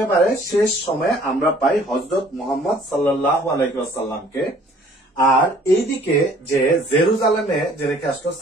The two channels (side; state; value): both; normal; correlation 0.56